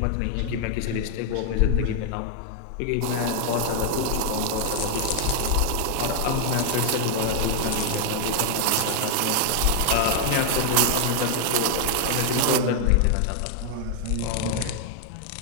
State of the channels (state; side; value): different; both; correlation 0.00